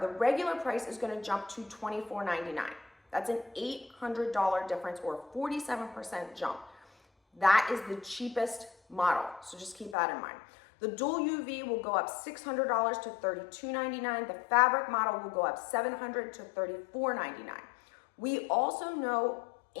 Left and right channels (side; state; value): right; drops out; at 10.0 s